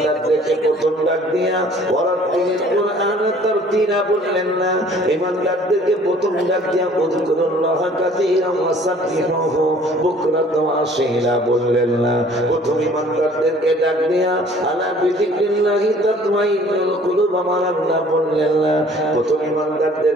প্রথম ডাক দিয়া ওয়ারাতিল কুরআন তারতিলা বললেন না। ঈমানদারদেরকে প্রথম ডাক দিয়া উযকুরুল্লাহ কাসীরান ওয়া সাব্বিহুহু বুকরাতান ওয়া আসীলা বললেন না। প্রথম ঈমানদারদেরকে ডাক দিয়া আলা বিযিকরিল্লাহি তাতমাইন্নুল কুলুব আমার আল্লাহ বললেন না। প্রথম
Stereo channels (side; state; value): both; normal; correlation 0.54